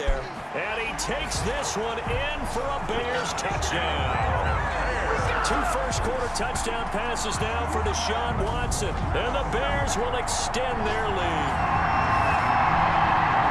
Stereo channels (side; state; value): both; identical; correlation 1.00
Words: And he takes this one in for a Bears touchdown. 2 first-quarter touchdown passes now for Deshaun Watson. And the Bears will extend their lead.